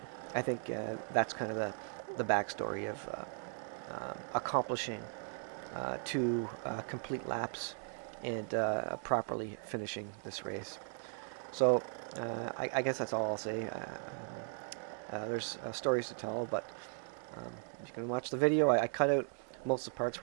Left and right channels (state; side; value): silent; left; 53 dB below the other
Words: that's kind of the backstory of accomplishing 2 complete laps and properly finishing this race. So I guess that's all I'll say. There's stories to tell, but you can watch the video. I cut out most of the parts